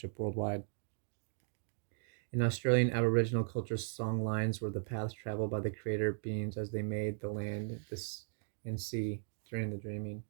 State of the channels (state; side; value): silent; left; digital silence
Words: worldwide. In Australian Aboriginal culture, song lines were the paths traveled by the creator beings as they made the land, and sea during the dreaming.